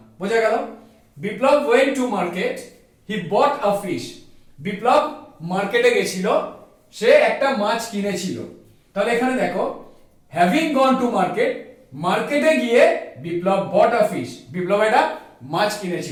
বোঝা গেল। Biplab went to market, he bought a fish, Biplab মার্কেটে গেছিল, সে একটা মাছ কিনেছিল। তাহলে এখানে দেখো হ্যাভিং গন টু মার্কেট, মার্কেটে গিয়ে বিপ্লব বট আ ফিশ, বিপ্লব একটা মাছ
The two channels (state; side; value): identical; both; correlation 1.00